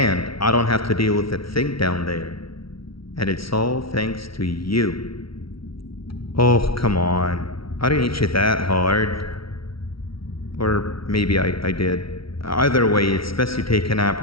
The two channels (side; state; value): right; late; 0.75 ms